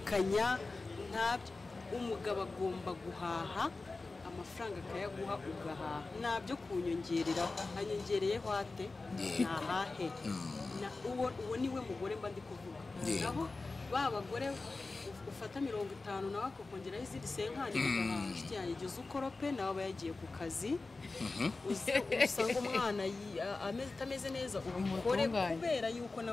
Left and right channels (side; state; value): right; quieter; 3.6 dB